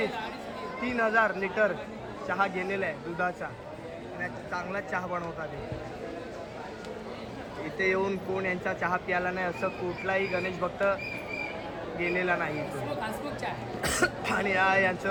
लिटर चहा गेलेला आहे दुधाचा. आणि चांगला चहा बनवतात. इथे येऊन कोण यांचा चहा प्यायला नाही असं कुठलाही गणेश भक्त गेलेला नाही. आणि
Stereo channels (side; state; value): both; identical; correlation 1.00